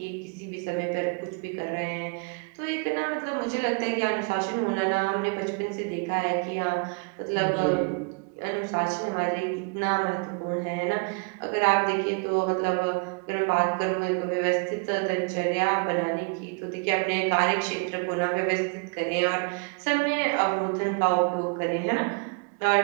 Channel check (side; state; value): left; quieter; 35.0 dB